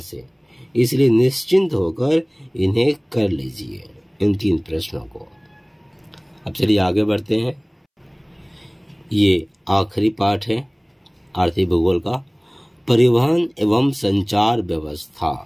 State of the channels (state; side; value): identical; both; correlation 1.00